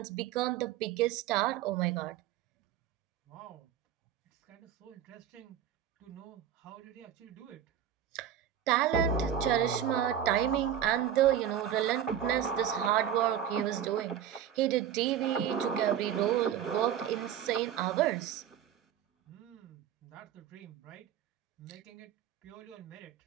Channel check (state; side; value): quieter; left; 9.9 dB